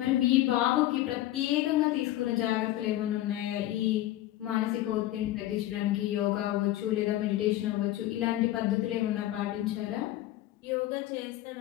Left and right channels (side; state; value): right; quieter; 14.8 dB